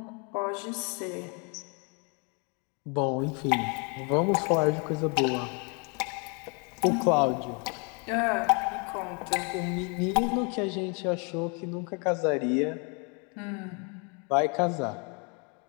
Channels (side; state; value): right; quieter; 34.6 dB